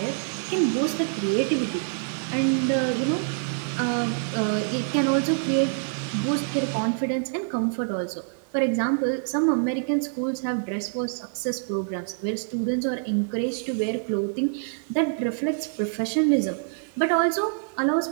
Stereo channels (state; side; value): silent; left; digital silence